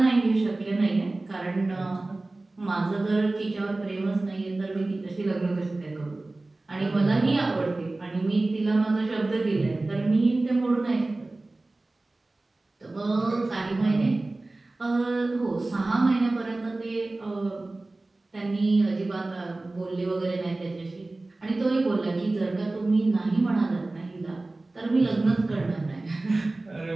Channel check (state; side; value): quieter; left; 3.0 dB